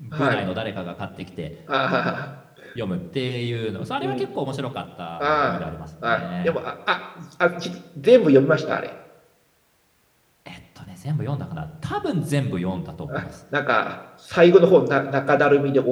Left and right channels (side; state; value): both; identical; correlation 1.00